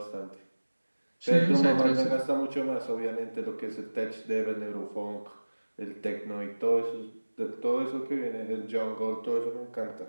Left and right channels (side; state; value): both; inverted; correlation -1.00